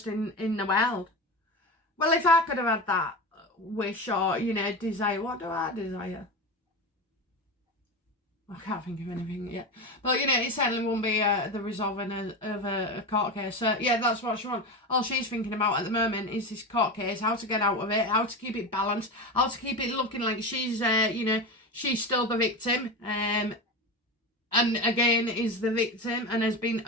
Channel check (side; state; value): both; normal; correlation 0.23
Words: in the world. Well, if I could have had that wish or, you know, desire, what do I desire? I can't think of anything yet. But, you know, it certainly won't be the resolving of a court case. So, yeah, that's what she wants. All she's thinking about at the moment is this court case, how to get out of it, how to keep it balanced, how to keep it looking like she's, you know, she's still the victim. And, again, is the victim and has been